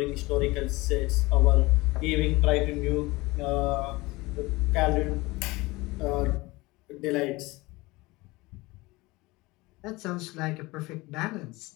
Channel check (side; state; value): right; quieter; 21.9 dB